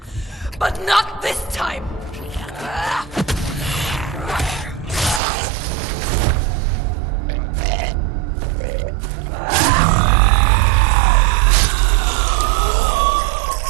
But not this time!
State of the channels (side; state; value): left; drops out; at 5.2 s